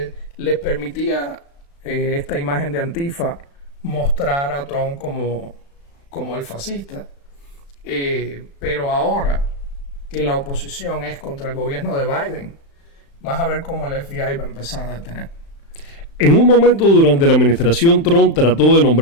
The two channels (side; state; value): right; late; 35 ms